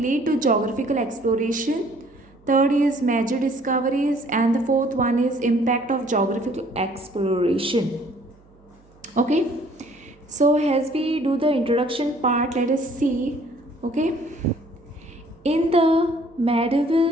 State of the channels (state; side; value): noise; right; hum, 29 dB below the sound